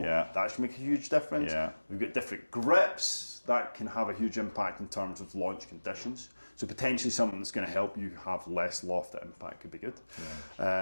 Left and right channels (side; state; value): both; inverted; correlation -1.00